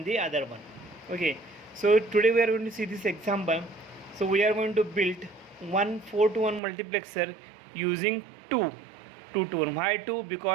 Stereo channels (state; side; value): drops out; left; at 6.6 s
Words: the other one. Okay, so today we are going to see this example. So we are going to build one 4 to 1 multiplexer using 2 to 1. Why 2?